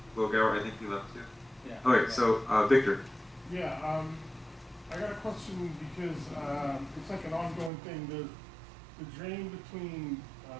Logauer, I think he left too. Yeah. Okay, so, Victor, Yeah, I got a question because, it's like an ongoing thing. The drain between,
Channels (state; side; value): drops out; left; at 7.7 s